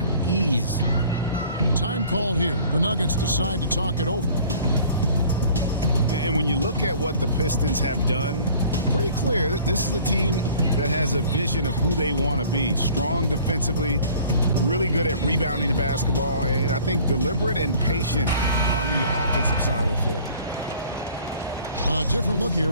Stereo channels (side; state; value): both; inverted; correlation -0.50